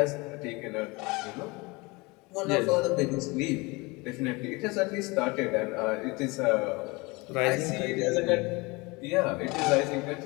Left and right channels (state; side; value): quieter; right; 25.3 dB